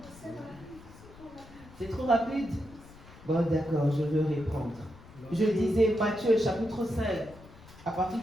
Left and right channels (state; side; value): noise; left; rumble, 20 dB below the sound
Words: C'est trop rapide? Bon, d'accord, je vais reprendre. Je disais Matthieu chapitre 5, à partir